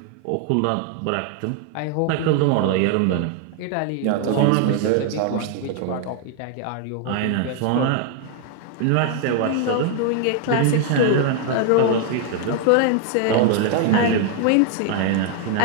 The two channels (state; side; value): different; both; correlation 0.00